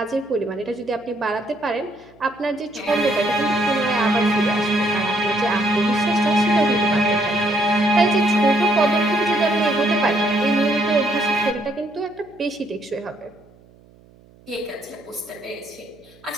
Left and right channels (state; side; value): noise; right; hum, 27 dB below the sound